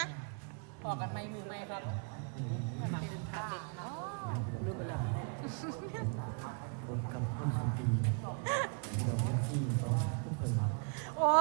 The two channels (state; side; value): quieter; left; 40.0 dB